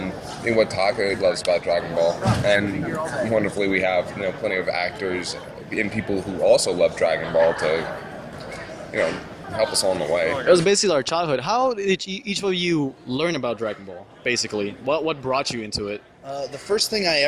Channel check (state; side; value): identical; both; correlation 1.00